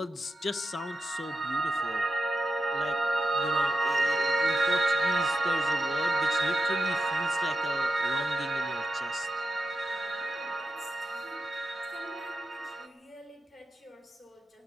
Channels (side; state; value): both; normal; correlation 0.88